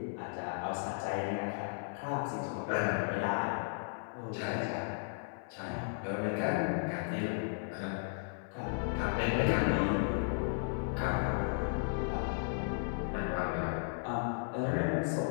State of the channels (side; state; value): right; silent; 54 dB below the other